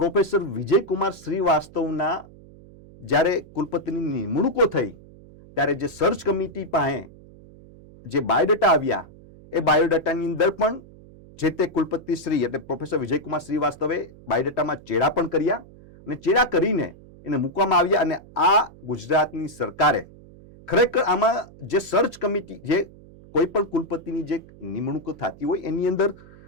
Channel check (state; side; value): noise; right; hum, 22 dB below the sound